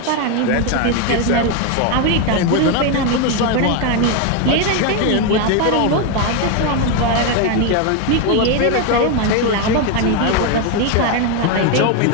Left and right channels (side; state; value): both; different; correlation 0.02